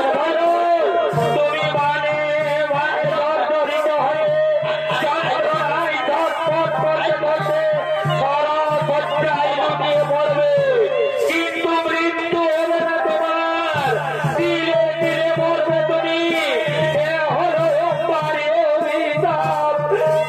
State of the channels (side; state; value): both; identical; correlation 1.00